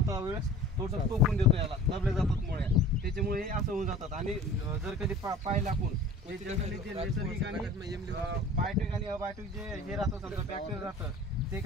वेळेस थोडंसं टोकून देतो, याला दबले जातात मुळ्या, त्याच्यामुळे हे असं होऊन जातात. आणि जर कधी पाहिलं आपण हे जनरली जे नैसर्गिक आणि बायोटिक आणि अबायोटिक जे हे राहतं समजा बॅक्टेरिया राहतं, ते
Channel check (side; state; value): both; normal; correlation 0.43